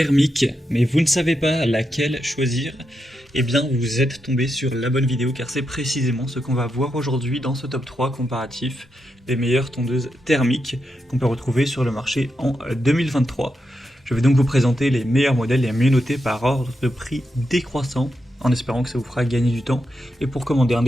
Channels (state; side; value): normal; both; correlation 0.85